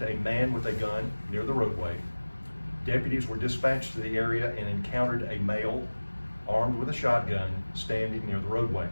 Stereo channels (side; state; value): both; inverted; correlation -1.00